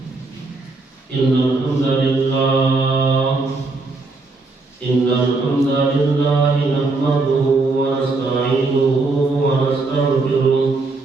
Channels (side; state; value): left; quieter; 3.5 dB